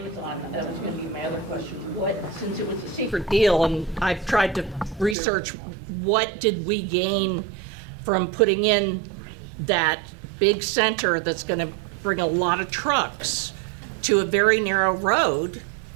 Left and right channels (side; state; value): left; drops out; at 5.2 s